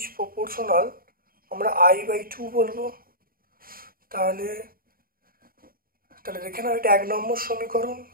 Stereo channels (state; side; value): late; left; 0.42 ms